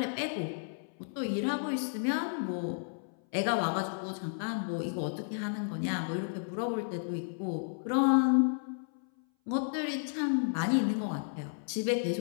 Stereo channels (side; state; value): right; silent; 56 dB below the other